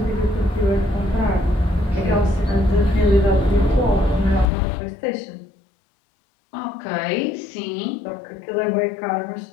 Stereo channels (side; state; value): right; drops out; at 4.5 s